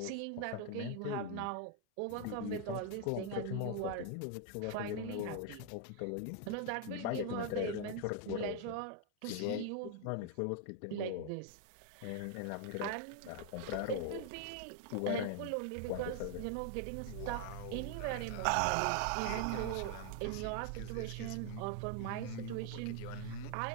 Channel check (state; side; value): different; both; correlation 0.00